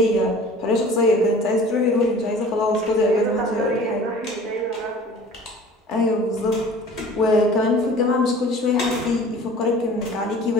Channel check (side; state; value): both; normal; correlation 0.46